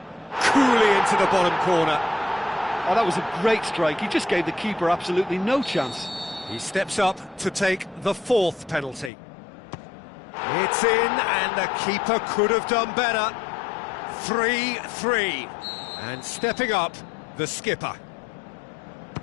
Coolly into the bottom corner. Oh, that was a great strike. He just gave the keeper absolutely no chance. He steps up to take the fourth penalty. It's in, and the keeper could have done better. 3-3. And stepping up, the skipper.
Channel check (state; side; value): drops out; right; at 9.1 s